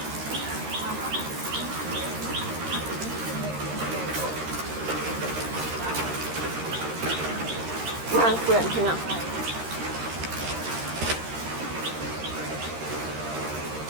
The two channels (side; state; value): left; late; 13 ms